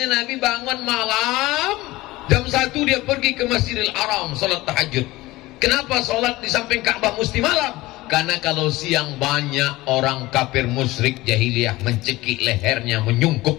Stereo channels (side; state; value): right; quieter; 19.1 dB